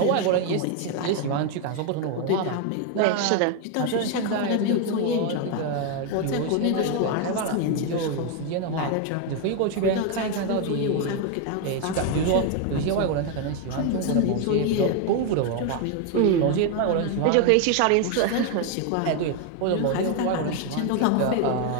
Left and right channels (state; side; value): different; both; correlation 0.01